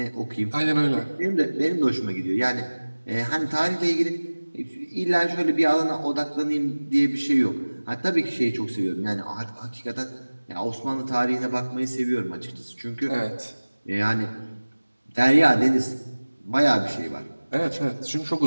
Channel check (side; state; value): both; inverted; correlation -1.00